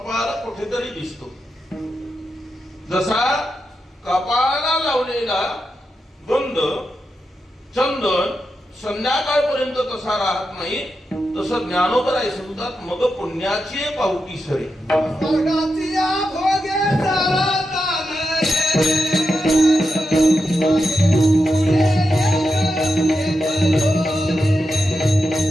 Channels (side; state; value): both; normal; correlation 0.87